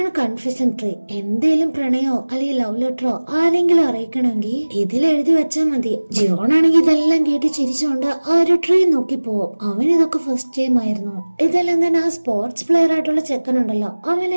കൺഫെഷൻ ട്രീ. എന്തേലും പ്രണയോ അല്ലെങ്കിൽ ലവ് ലെറ്ററോ ആരെങ്കിലും അറിയിക്കണമെങ്കിൽ ഇതിൽ എഴുതി വെച്ചാൽ മതി. ജിവോണാണെങ്കിൽ ഇതെല്ലാം കേട്ട് ചിരിച്ചുകൊണ്ട് ആ ഒരു ട്രീ നോക്കി പോവും. അവൻ ഇതൊക്കെ ഫസ്റ്റ് ടൈം ആയിരുന്നു. ഇതെല്ലാം തന്നെ ആ സ്പോർട്സ് പ്ലെയർ ആയിട്ടുള്ള ചെക്കനുണ്ടല്ലോ,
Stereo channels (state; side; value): inverted; both; correlation -1.00